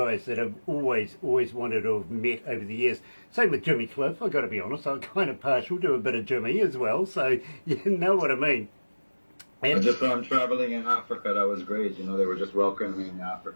that I've always wanted to have met over the years. Same with Jimmy Cliff, I've got to be honest. I'm kind of partial to a bit of Jimmy as well, so you know what I mean. And just from traveling in Africa, that was great. You know, they were just welcoming me in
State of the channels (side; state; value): both; inverted; correlation -1.00